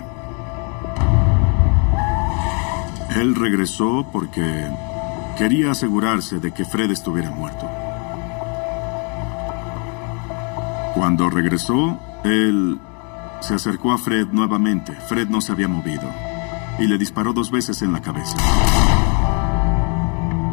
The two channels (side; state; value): right; quieter; 36.8 dB